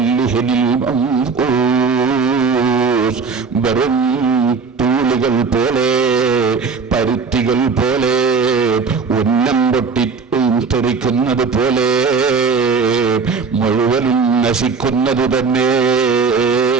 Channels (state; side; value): quieter; left; 5.1 dB